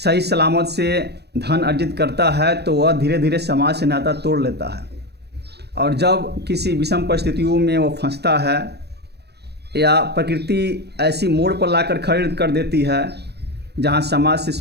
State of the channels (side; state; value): left; late; 0.48 ms